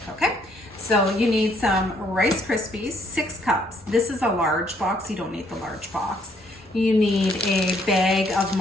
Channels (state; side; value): normal; both; correlation 0.67